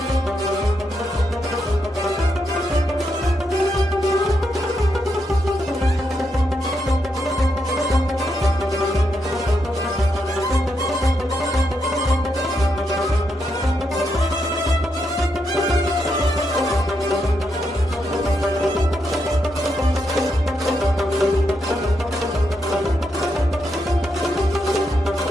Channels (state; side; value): normal; both; correlation 0.81